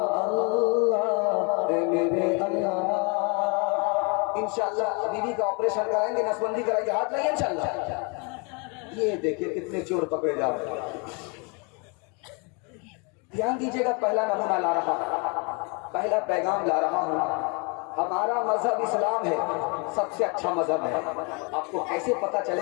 اللہ، اے میرے اللہ۔ انشاءاللہ بیوی کا آپریشن کرائیں گے، نسبندی کرائیں گے، ہاتھ لگے انشاءاللہ۔ یہ دیکھیں کتنے چور پکڑے جا رہے ہیں۔ دھیان دیجیے گا، پہلا نمونہ لا رہا ہوں، پہلا پیغام لا رہا ہوں۔ ہمارا مذہب اسلام ہے، سب سے اچھا مذہب ہے۔ آپ کو کیسے پتا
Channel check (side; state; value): right; quieter; 32.8 dB